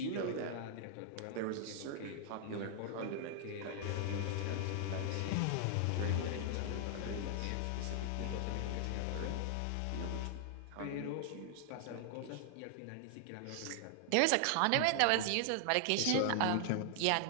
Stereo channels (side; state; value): both; different; correlation 0.00